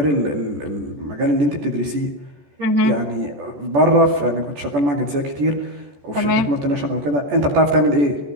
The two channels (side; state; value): left; late; 14 ms